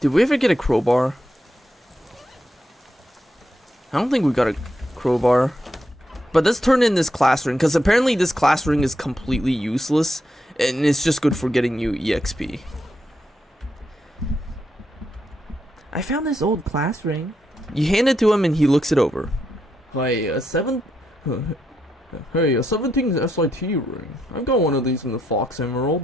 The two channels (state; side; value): normal; both; correlation 0.81